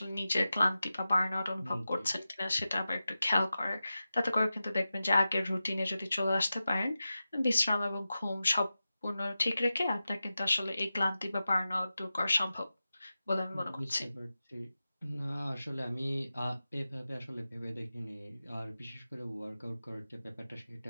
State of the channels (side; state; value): both; inverted; correlation -0.93